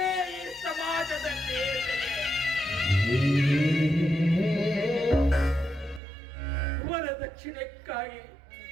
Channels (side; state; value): left; drops out; at 6.0 s